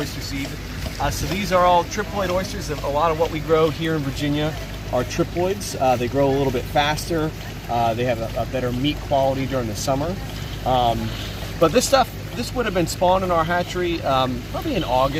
seed. So these are all triploid oysters. A lot of what we grow here in Virginia are triploids. They grow a little bit faster. They have a better meat quality during the summer. But this would have been spawned in our hatchery probably in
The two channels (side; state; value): both; identical; correlation 1.00